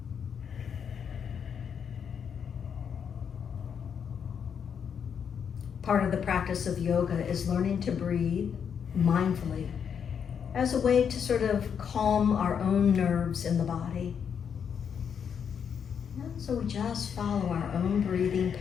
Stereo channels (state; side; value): quieter; right; 7.4 dB